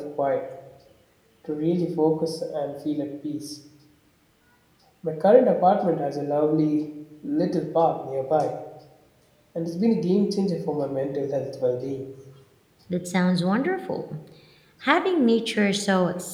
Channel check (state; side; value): identical; both; correlation 1.00